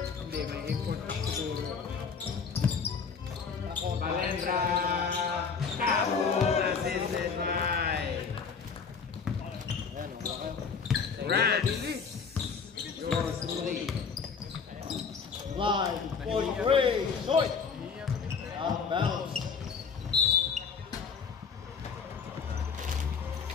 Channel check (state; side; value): quieter; right; 5.7 dB